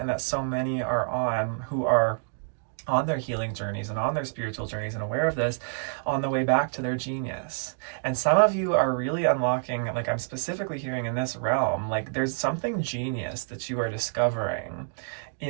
that so many are on who are on their healing journeys and on their spiritual journeys and aware of this on the way back to their genius. And some of you are really unlocking, like I'm specifically hearing in this realm, like there's something genius that you are discovering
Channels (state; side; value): silent; left; digital silence